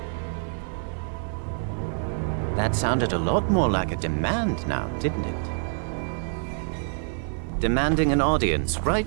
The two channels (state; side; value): silent; left; 61 dB below the other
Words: That sounded a lot more like a demand now, didn't it? Demanding an audience